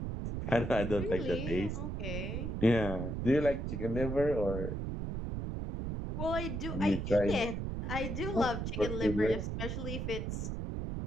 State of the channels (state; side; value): noise; right; rumble, 3 dB below the sound